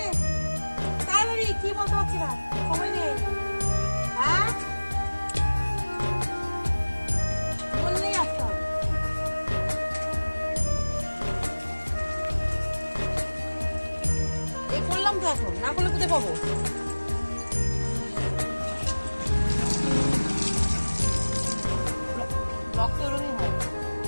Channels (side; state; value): both; inverted; correlation -1.00